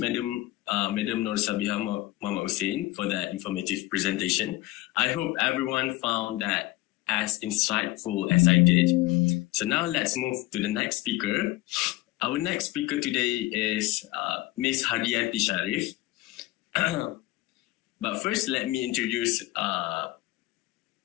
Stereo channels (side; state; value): right; quieter; 18.8 dB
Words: Nur Sabiha Muhammad Hussein, for that informative presentation. I hope everyone found that as insightful as I did. So now let's move to the next speaker. Our next speaker today is Ms. Hardianti Sharif. But first, let me introduce